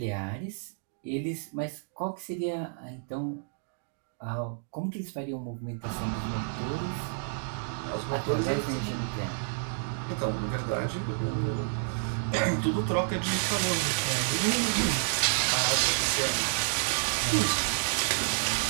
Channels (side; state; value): left; silent; digital silence